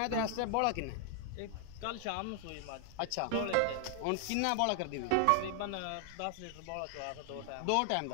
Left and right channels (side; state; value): both; different; correlation 0.00